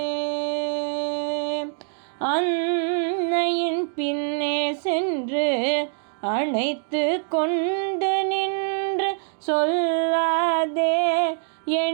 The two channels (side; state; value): left; silent; digital silence